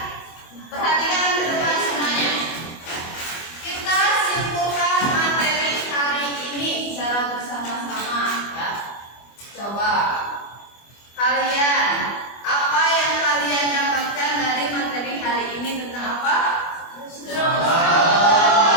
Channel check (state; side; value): late; right; 25 ms